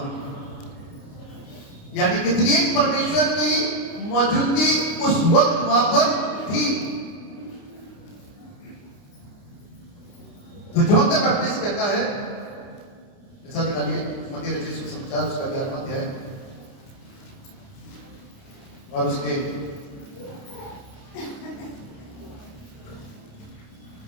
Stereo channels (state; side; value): late; right; 29 ms